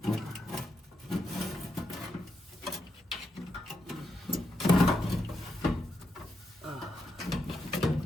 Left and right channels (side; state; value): both; normal; correlation 0.83